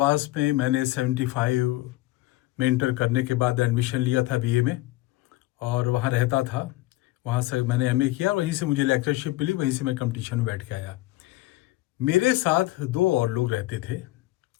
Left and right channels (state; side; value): quieter; right; 18.0 dB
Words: में मैंने 75 में इंटर करने के बाद एडमिशन लिया था बीए में, और वहाँ रहता था। वहाँ से मैंने एमए किया, वहीं से मुझे लेक्चरशिप मिली, वहीं से मैं कंपटीशन में बैठ के आया। मेरे साथ दो और लोग रहते थे,